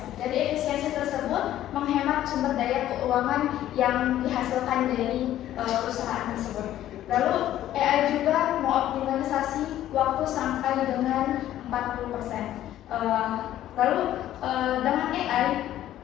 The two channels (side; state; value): right; quieter; 12.8 dB